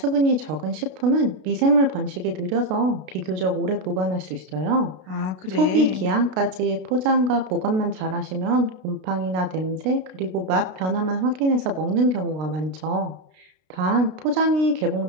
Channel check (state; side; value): late; left; 32 ms